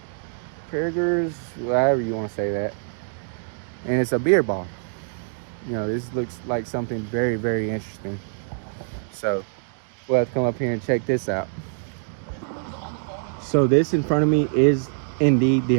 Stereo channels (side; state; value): left; silent; digital silence